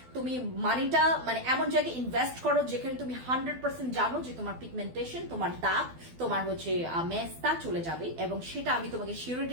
তুমি মানিটা মানে এমন জায়গায় ইনভেস্ট করো যেখানে তুমি 100% জানো যে তোমার পিগমেন্টেশন, তোমার দাগ, তোমার হচ্ছে মেস্তা চলে যাবে, এবং সেটা আমি তোমাকে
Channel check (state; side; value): late; left; 12 ms